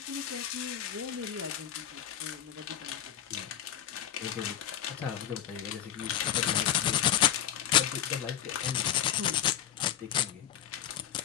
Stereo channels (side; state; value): right; quieter; 10.5 dB